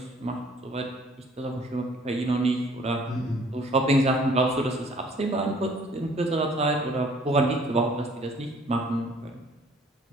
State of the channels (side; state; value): both; normal; correlation 0.57